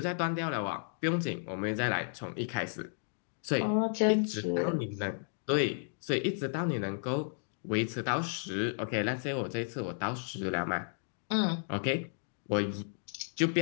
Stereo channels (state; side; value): silent; right; digital silence